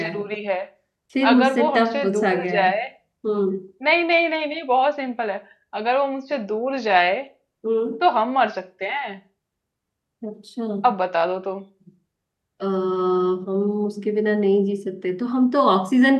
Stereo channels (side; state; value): both; identical; correlation 1.00